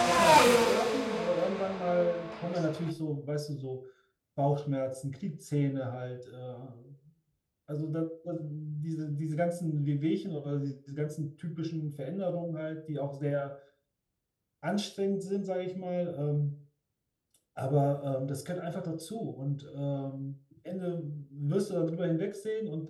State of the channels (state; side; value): identical; both; correlation 1.00